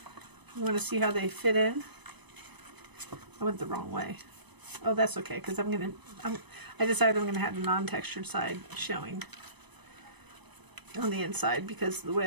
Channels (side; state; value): left; late; 0.99 ms